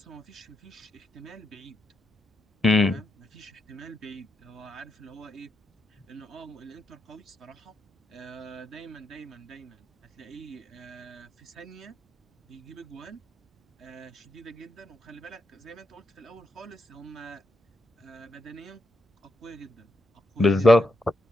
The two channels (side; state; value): both; normal; correlation 0.82